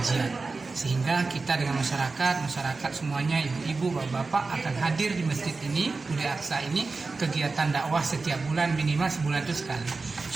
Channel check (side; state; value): left; quieter; 3.9 dB